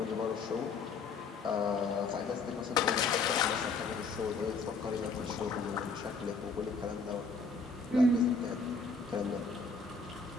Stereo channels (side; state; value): right; quieter; 4.2 dB